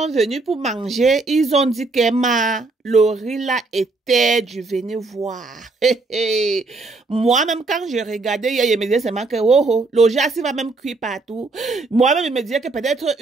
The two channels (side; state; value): left; quieter; 3.6 dB